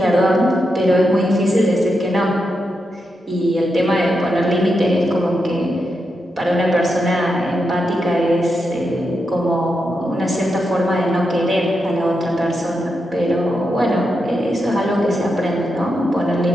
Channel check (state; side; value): normal; both; correlation 0.86